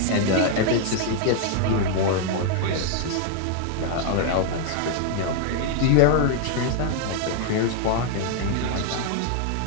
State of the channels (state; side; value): different; both; correlation 0.00